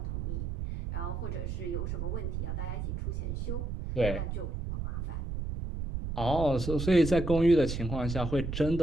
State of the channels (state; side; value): noise; right; rumble, 3 dB below the sound